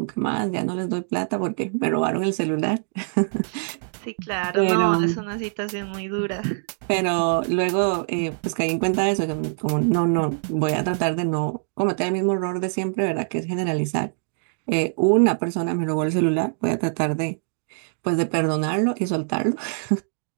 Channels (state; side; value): silent; left; digital silence